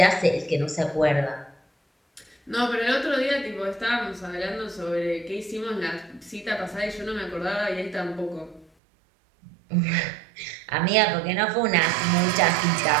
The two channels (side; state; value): left; drops out; at 8.7 s